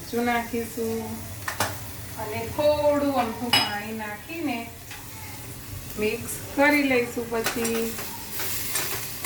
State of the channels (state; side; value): identical; both; correlation 1.00